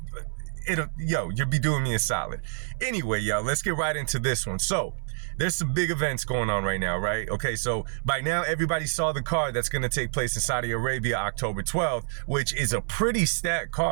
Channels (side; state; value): left; silent; 57 dB below the other